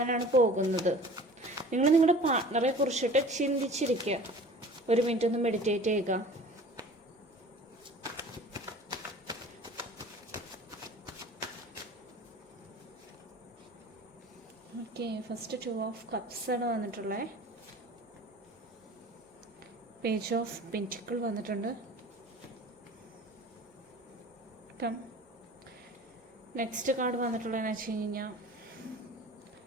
പോകുന്നത്. നിങ്ങൾ നിങ്ങളുടെ പാർട്ട്ണറെ കുറിച്ചിട്ട് ചിന്തിച്ചിരിക്കുക. ഒരു മിനിറ്റ് ഒന്ന് മെഡിറ്റേറ്റ് ചെയ്യുക. ഓക്കെ, ഫസ്റ്റ് 2 ഓഫ് കപ്സ് ആണ് വന്നിട്ടുള്ളത്. പേജ് ഓഫ് പെന്റിക്കിൾ വന്നിട്ടുണ്ട്. നെക്സ്റ്റ് കാർഡ് വന്നിട്ടുള്ളതെന്ന് വെച്ച് കഴിഞ്ഞാൽ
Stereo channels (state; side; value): normal; both; correlation 0.43